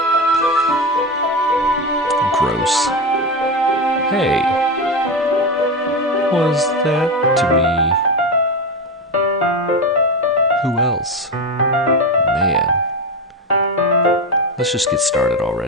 Gross. Hey. Was that to me? Who else? Man. Let's just get started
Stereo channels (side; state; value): both; normal; correlation 0.17